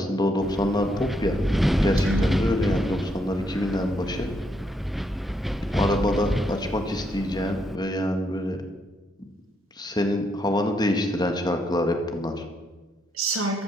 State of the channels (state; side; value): normal; both; correlation 0.76